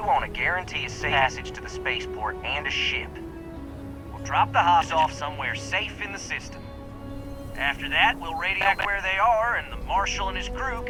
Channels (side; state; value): both; identical; correlation 1.00